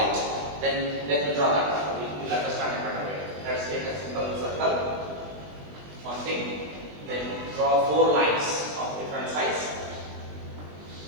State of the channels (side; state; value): left; late; 20 ms